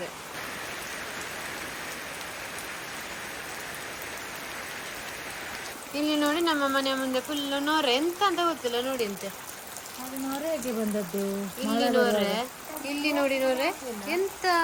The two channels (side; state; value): both; identical; correlation 1.00